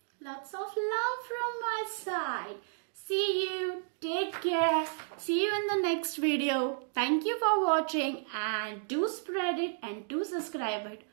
lots of love from my side. See you. Take care. See you in the next video. Thank you for watching, and do spread it and do subscribe it.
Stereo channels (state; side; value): silent; left; digital silence